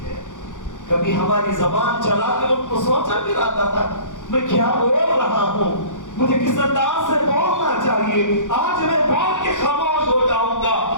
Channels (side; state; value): right; late; 0.87 ms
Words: ہے، کبھی ہماری زبان چلاتے وقت تو سوچا بھی رہتا تھا میں کیا بول رہا ہوں، مجھے کس انداز سے بولنا چاہیے، آج میں بول کے خاموش ہو جاؤں گا،